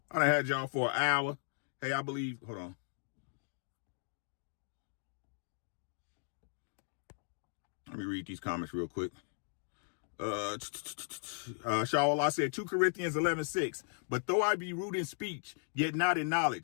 I done had y'all for an hour. Hey, I believe, hold on. Let me read these comments real quick. Shawallah said 2 Corinthians 11:6. But though I be rude in speech, yet not in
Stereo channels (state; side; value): silent; right; digital silence